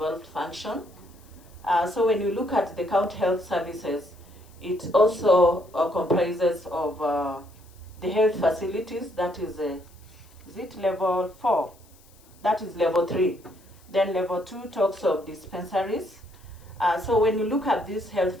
function. So when you look at the county health services, it also comprises of the health facilities, that is it level 4? That is level 3. Then level 2 talks of dispensaries. So when you look at these health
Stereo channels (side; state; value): left; noise; hiss, 28 dB below the sound